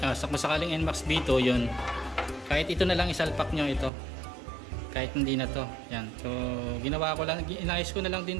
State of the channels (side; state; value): left; drops out; at 3.9 s